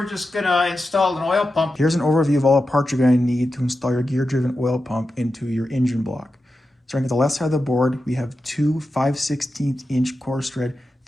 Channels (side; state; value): both; normal; correlation 0.91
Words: just going to install an oil pump. Here's an overview of all the parts you're going to need to install your gear-driven oil pump into your engine block. Starting at the left side of the board, we have two 5/16 inch coarse thread,